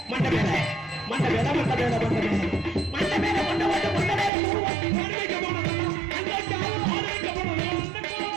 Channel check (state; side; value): drops out; left; at 4.3 s